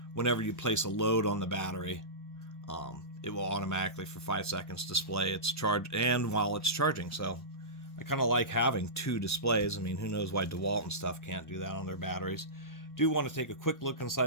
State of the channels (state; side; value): late; right; 1.1 ms